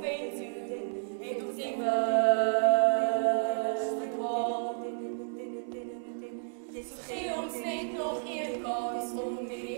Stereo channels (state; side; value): silent; left; digital silence